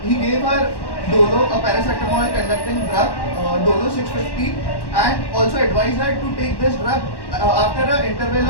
Dolo, a paracetamol conducting drug, Dolo 650, and also advised her to take this drug after an interval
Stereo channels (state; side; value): late; right; 1.1 ms